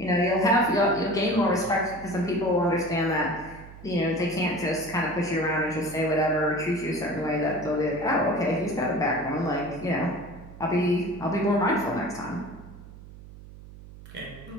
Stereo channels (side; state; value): right; noise; hum, 17 dB below the sound